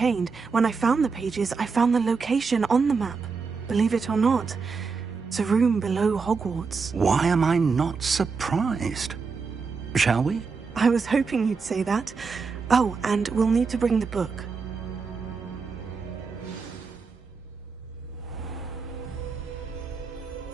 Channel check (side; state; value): left; quieter; 5.0 dB